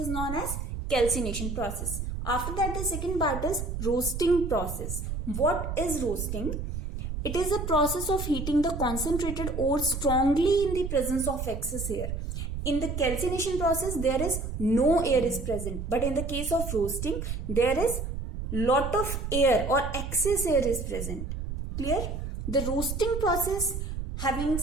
known as calcination process. After that, the second part is roasting process. What is roasting? It is a process of heating the concentrated ore strongly in the presence of excess air. In the calcination process, there is no air is present. But in the case of roasting, there is lot of air or excess air is present. Clear? The roasting process having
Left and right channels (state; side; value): noise; right; rumble, 5 dB below the sound